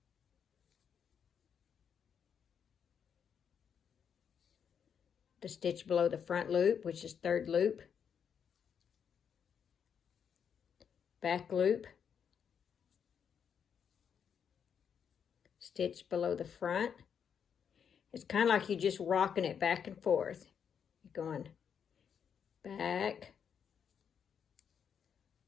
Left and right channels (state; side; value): quieter; right; 7.5 dB